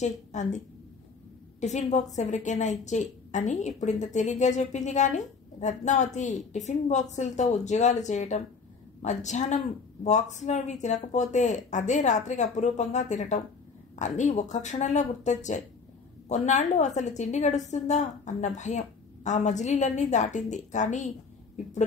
అంది. టిఫిన్ బాక్స్ ఎవరికైనా ఇచ్చేయి అని ఇప్పుడు ఇంత తేలిగ్గా చెప్పింది. కానీ రత్నావతి టిఫిన్ బాక్సులతో ఉద్యోగాలు చేయటం, మధ్యాహ్నం బాక్సులోవి తినకపోతే అదే రాత్రికి అపురూపంగా తినటం అన్నీ ఒక్క క్షణంలో గుర్తొచ్చాయి. కొన్నాళ్ళు అసలు తిండి గడుస్తుందా అన్న భయం ఆ మజిలీలన్నీ దాటింది. కానీ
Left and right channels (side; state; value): right; quieter; 4.9 dB